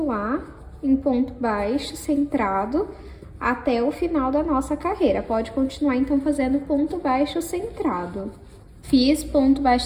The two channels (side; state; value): both; identical; correlation 1.00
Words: lá, em ponto baixo centrado, até o final da nossa carreira. Pode continuar, então, fazendo ponto baixo centrado. Fiz ponto